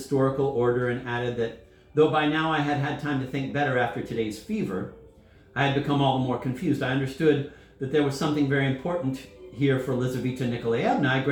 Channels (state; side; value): identical; both; correlation 1.00